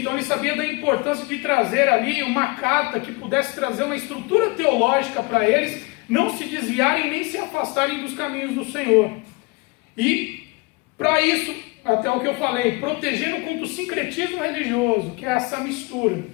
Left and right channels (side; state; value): right; quieter; 26.7 dB